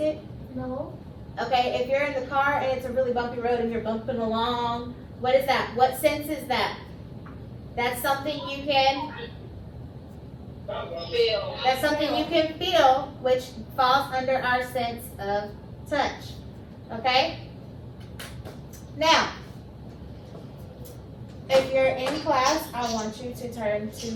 No. Okay, if you're in the car and it's a really bumpy road and you're bumping along, what is that? What sense is that? That's something you can Feel. That's something you can feel, which falls under our sense of touch. Okay? Now, if you're in class, I want you to turn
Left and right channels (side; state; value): both; identical; correlation 1.00